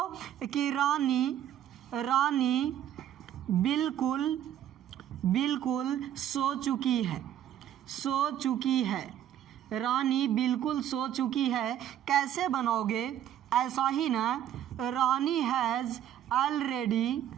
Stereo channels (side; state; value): left; quieter; 10.9 dB